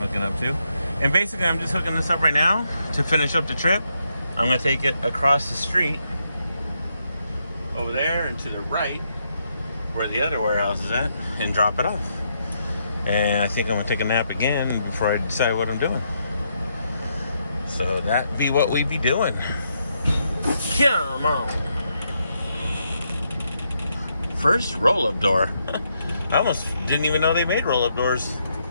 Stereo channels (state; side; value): inverted; both; correlation -0.79